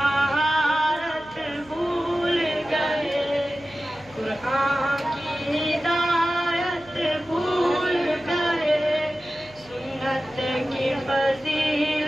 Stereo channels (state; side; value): noise; right; hum, 26 dB below the sound